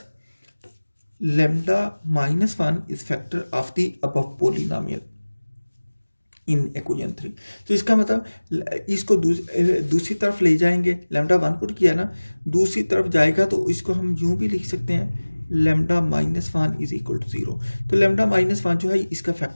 lambda -1 is factor of the above polynomial in equation 3। तो इसका मतलब इसको दूसरी तरफ ले जाएंगे, लैम्डा 1 पुट किया ना, दूसरी तरफ जाएगा तो इसको हम यूं भी लिख सकते हैं लैम्डा -1 इज इक्वल टू 0। तो लैम्डा -1 जो है इसका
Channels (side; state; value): both; inverted; correlation -1.00